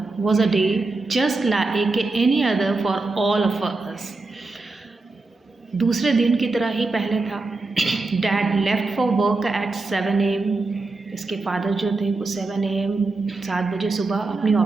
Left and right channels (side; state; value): left; quieter; 3.4 dB